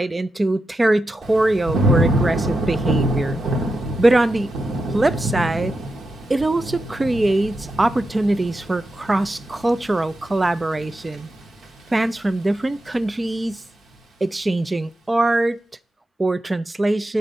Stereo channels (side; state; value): both; normal; correlation 0.89